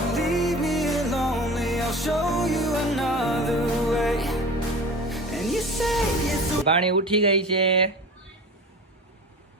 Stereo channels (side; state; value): both; normal; correlation 0.36